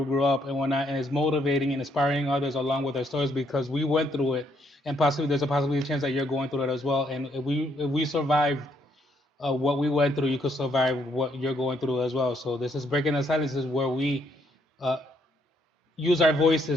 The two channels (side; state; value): both; normal; correlation 0.72